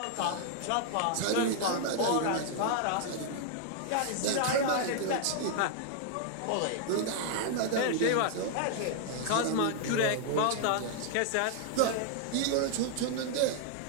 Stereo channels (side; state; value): both; different; correlation 0.00